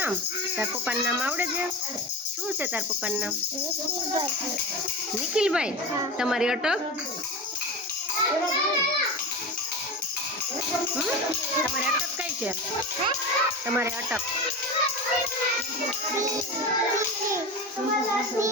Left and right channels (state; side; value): normal; both; correlation 0.25